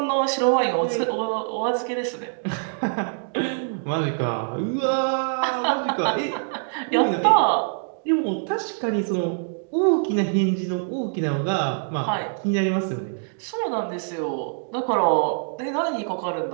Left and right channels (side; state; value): left; silent; digital silence